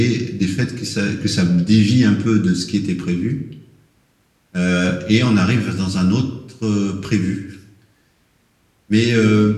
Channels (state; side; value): identical; both; correlation 1.00